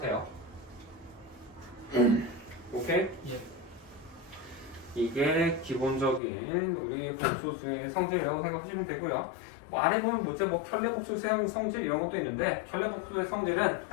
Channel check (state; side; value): drops out; right; at 6.2 s